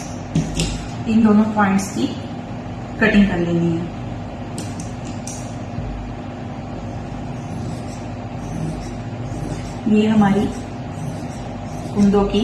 इन दोनों पॉइंट्स की कटिंग कर लेनी है। ये हमारी कुंदों की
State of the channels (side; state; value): both; identical; correlation 1.00